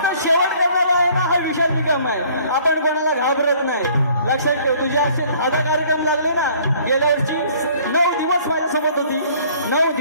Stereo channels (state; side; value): inverted; both; correlation -0.57